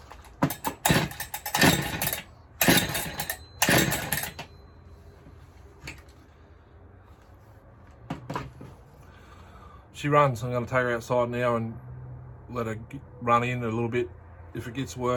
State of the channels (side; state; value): both; identical; correlation 1.00